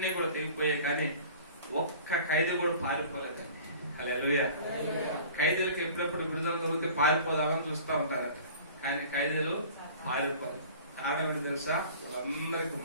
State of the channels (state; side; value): inverted; both; correlation -0.44